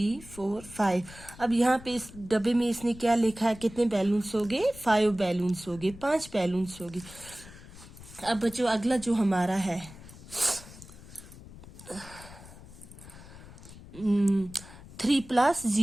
4 5। अब यहाँ पे इस डब्बे में इसने क्या लिखा है? कितने बैलून्स हो गए? 5 बैलून्स हो गए, 5 बैलून्स हो गए। अब बच्चों, अगला जो हमारा है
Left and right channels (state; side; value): noise; left; rumble, 18 dB below the sound